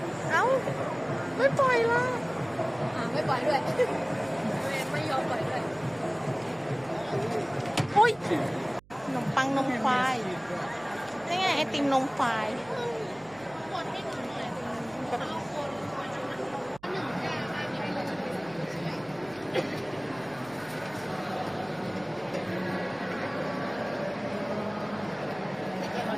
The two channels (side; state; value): right; noise; hum, 26 dB below the sound